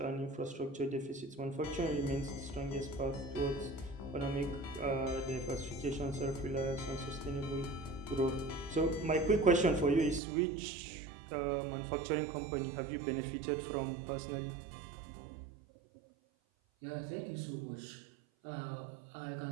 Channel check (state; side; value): drops out; left; at 10.2 s